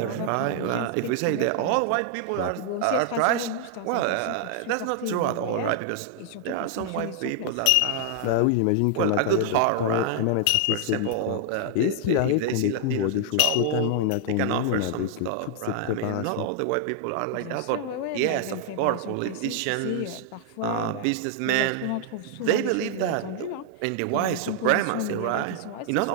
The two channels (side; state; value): both; different; correlation 0.00